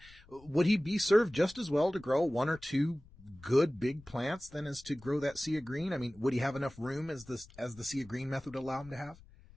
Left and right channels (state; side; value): noise; left; rumble, 24 dB below the sound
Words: Would he be served just as well to grow 1 or 2 good big plants than as to grow that sea of green? I mean, would he have enough room as the sea of green method would allow him to have?